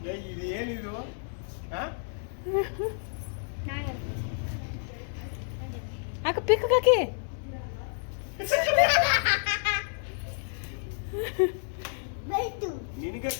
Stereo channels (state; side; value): silent; right; digital silence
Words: ಇದು ಏನಿದು ಹಾ ಅಕ್ಕ ಪಿಕ್ ಹಾಕಿ ಬೈತು